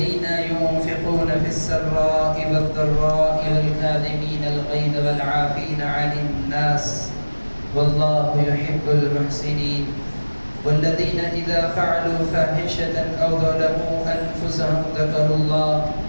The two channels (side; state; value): both; inverted; correlation -1.00